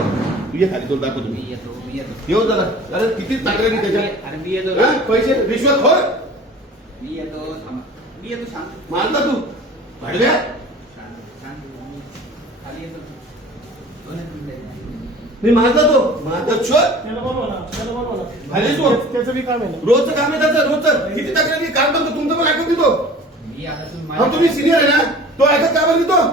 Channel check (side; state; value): both; normal; correlation 0.43